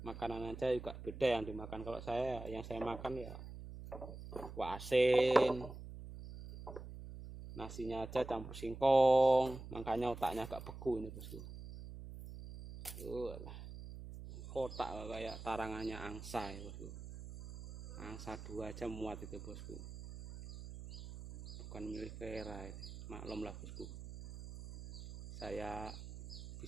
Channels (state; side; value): noise; right; hum, 11 dB below the sound